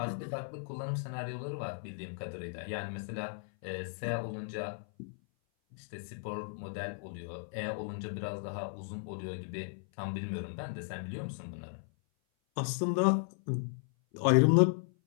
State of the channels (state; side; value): silent; right; 54 dB below the other